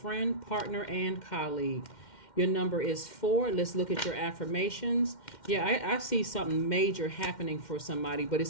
partner, and colleague. Your number is 4. Let's look at your affirmations. Yeah, I see something major happening for somebody, but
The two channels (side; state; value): right; late; 2.1 ms